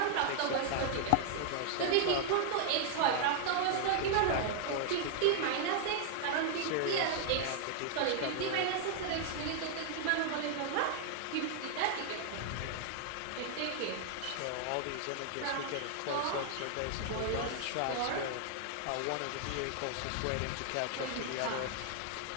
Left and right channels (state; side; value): different; both; correlation 0.00